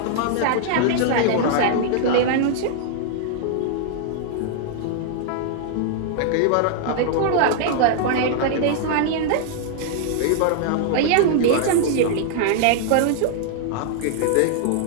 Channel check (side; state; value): both; different; correlation -0.01